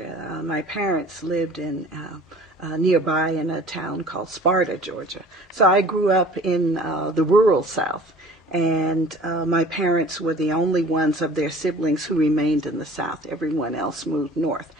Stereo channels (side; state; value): both; normal; correlation 0.47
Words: My parents lived in nearby in a town called Sparta, Georgia. So I grew up in the rural South, and my parents were the only ones of their siblings who remained in the South. Everyone else moved north.